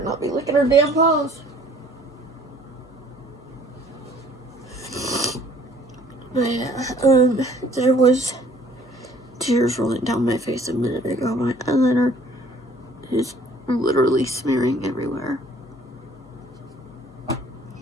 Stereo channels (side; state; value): both; normal; correlation 0.56